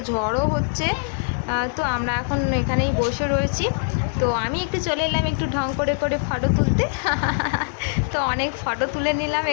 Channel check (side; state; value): right; silent; digital silence